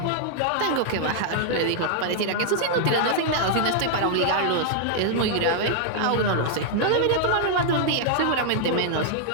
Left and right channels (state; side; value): different; both; correlation -0.01